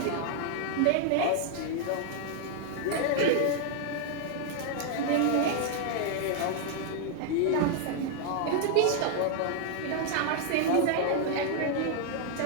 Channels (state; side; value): different; both; correlation 0.00